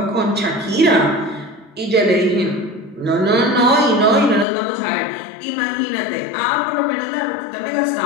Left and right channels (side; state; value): right; drops out; at 4.5 s